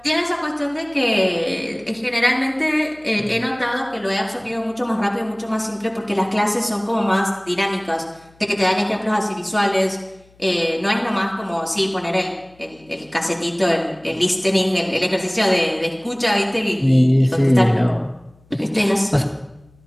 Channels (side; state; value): left; noise; hum, 30 dB below the sound